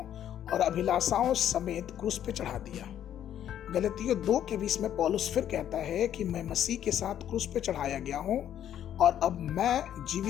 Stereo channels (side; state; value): right; quieter; 10.5 dB